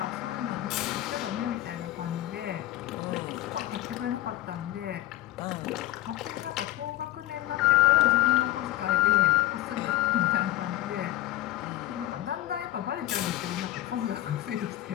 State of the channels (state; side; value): quieter; right; 15.2 dB